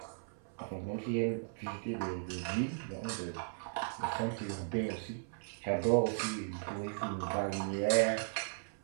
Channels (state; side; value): silent; left; 53 dB below the other